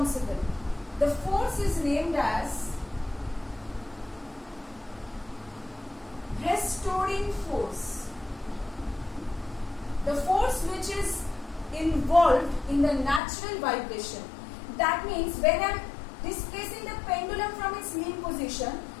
The force is named as restoring force. The force which is involved in the natural vibration. That means when I am displacing the pendulum from its mean position,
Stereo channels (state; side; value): drops out; right; at 13.2 s